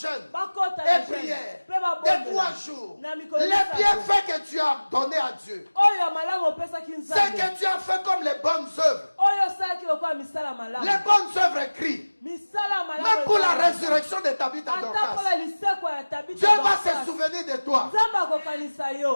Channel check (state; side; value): inverted; both; correlation -1.00